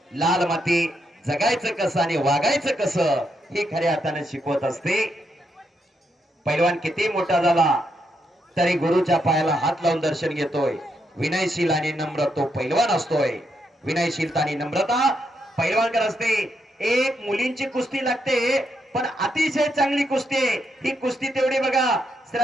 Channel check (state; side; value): normal; both; correlation 0.80